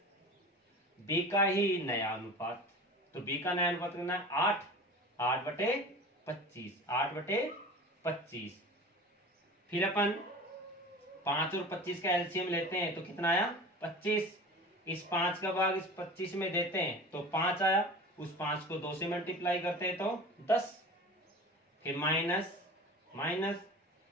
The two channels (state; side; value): normal; both; correlation 0.36